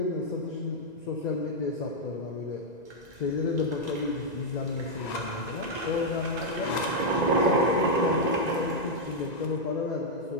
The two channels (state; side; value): late; right; 1.9 ms